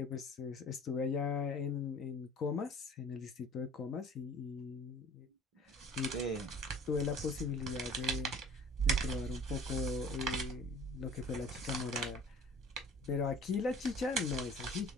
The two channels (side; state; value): both; normal; correlation 0.47